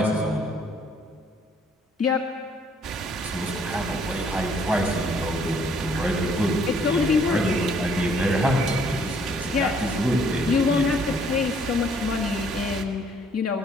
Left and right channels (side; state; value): both; normal; correlation 0.63